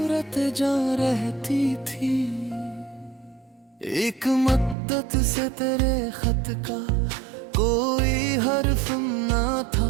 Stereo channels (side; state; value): left; drops out; at 4.8 s